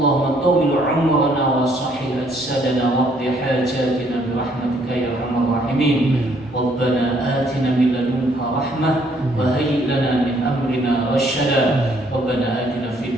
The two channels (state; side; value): normal; both; correlation 0.66